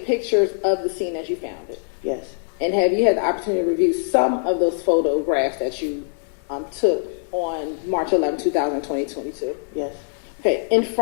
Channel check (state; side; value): silent; right; digital silence